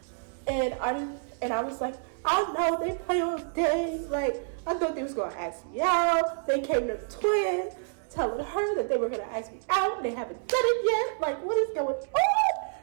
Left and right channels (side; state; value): left; silent; 59 dB below the other